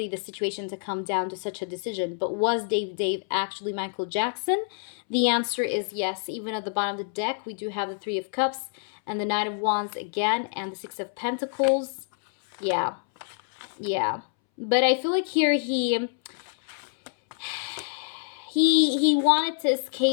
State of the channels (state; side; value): silent; right; 60 dB below the other